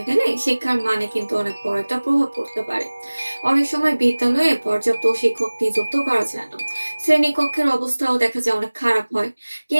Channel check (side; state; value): both; inverted; correlation -1.00